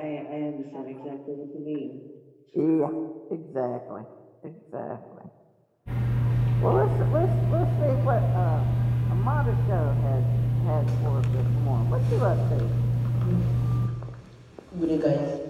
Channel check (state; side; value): identical; both; correlation 1.00